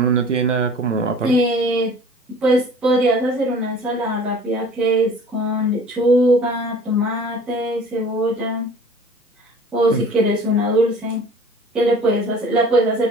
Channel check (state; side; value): normal; both; correlation 0.46